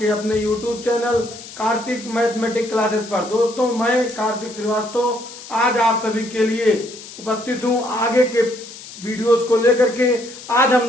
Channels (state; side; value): noise; left; hiss, 15 dB below the sound